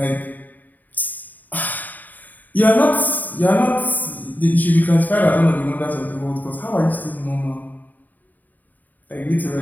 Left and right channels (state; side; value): late; right; 0.084 ms